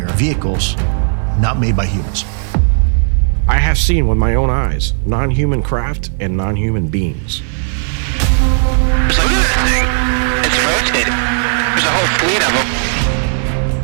vehicles not made by humans. I have seen with my own eyes non-human craft and non-human beings. So look at that thing. It's rotating. There's a whole fleet of them.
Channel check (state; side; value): silent; left; digital silence